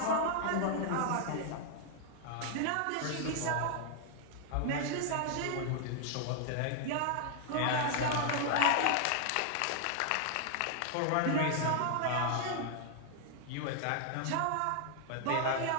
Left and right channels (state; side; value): different; both; correlation 0.00